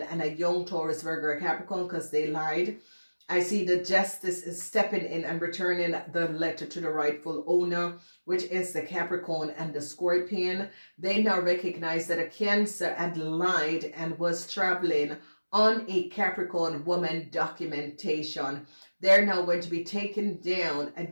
and a young Taurus, Virgo, or Capricorn because they lied. I see the justice is stepping in and returning the letter to the rightful owner, which is the Capricorn and the Scorpion. They now recognize that a Cancer had lied and was traveling on a Capricorn woman documentation. They're now going to be taking down a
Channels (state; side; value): inverted; both; correlation -1.00